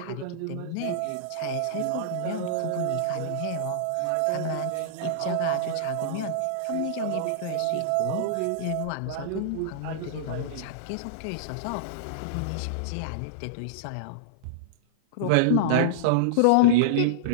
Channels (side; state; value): both; different; correlation -0.02